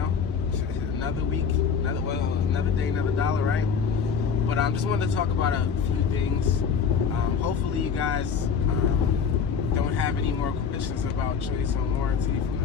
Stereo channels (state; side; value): quieter; right; 6.4 dB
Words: another week, another day, another dollar, right? But I just wanted to talk about a few things. Hopefully you guys don't have any more questions about choice on warranty from the